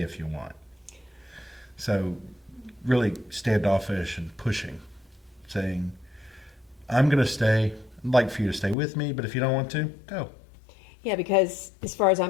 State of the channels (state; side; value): drops out; right; at 8.8 s